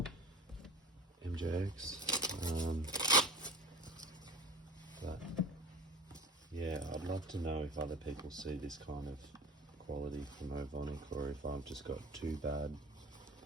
MJX. But yeah, I'd love to know if other people see this kind of quality from Ovonic, or if I've just got too bad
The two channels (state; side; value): normal; both; correlation 0.38